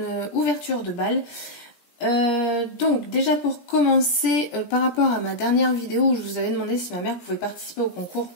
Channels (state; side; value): late; right; 17 ms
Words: ouverture de bal. Donc déjà pour commencer, par rapport à ma dernière vidéo où je vous avais demandé si ma mère pouvait participer au concours